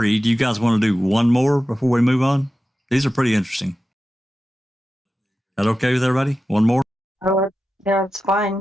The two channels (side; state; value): both; normal; correlation 0.93